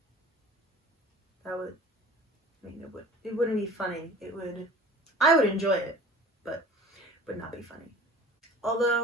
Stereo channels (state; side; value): normal; both; correlation 0.44